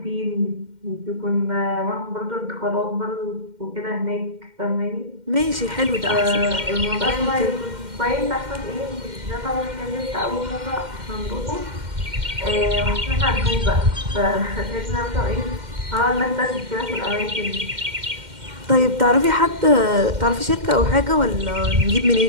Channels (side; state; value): left; late; 2.1 ms